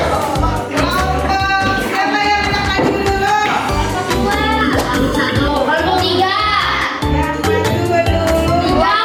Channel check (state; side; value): identical; both; correlation 1.00